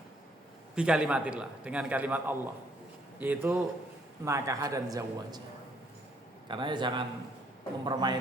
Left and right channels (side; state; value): both; normal; correlation 0.67